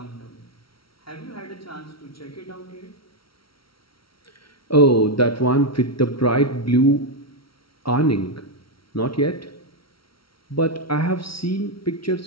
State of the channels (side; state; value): right; late; 0.74 ms